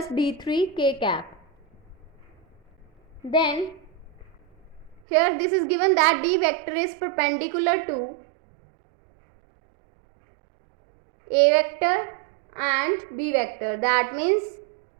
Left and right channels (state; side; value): drops out; left; at 5.0 s